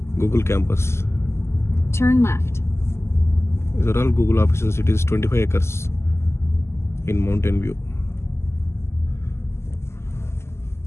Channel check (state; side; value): late; right; 0.13 ms